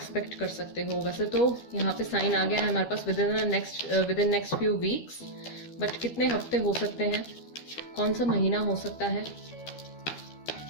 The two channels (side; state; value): right; late; 12 ms